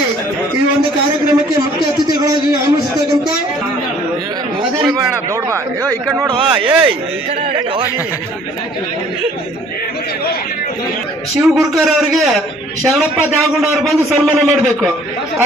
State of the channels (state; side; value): normal; both; correlation 0.56